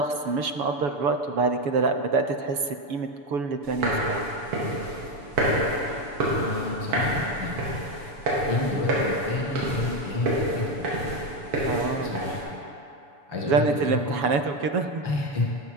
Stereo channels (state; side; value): late; left; 7.1 ms